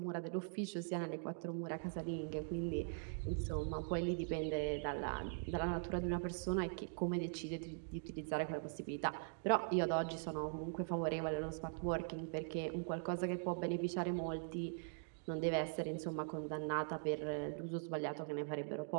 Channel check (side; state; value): left; silent; digital silence